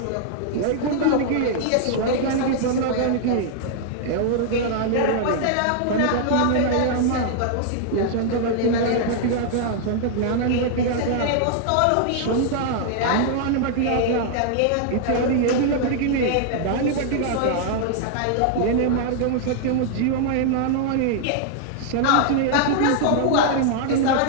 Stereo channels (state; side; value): different; both; correlation -0.01